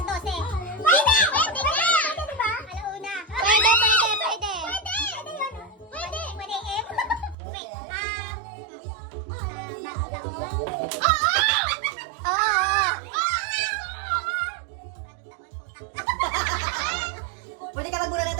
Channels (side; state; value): left; drops out; at 7.4 s